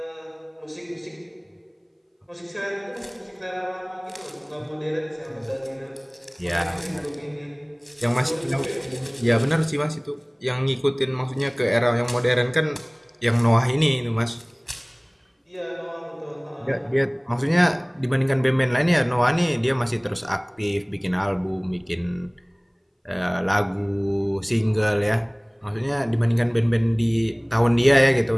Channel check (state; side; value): identical; both; correlation 1.00